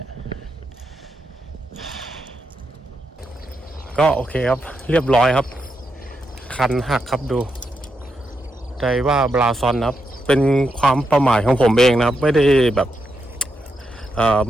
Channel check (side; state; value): both; normal; correlation 0.84